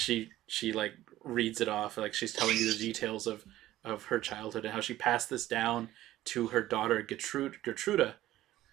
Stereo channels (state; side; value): quieter; left; 14.8 dB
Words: like reads it off like she's telling you the details of her childhood and how she passed this down to her daughter Gertruda,